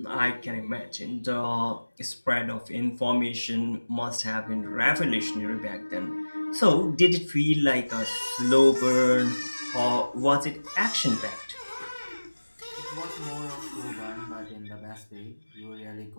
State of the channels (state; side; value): inverted; both; correlation -1.00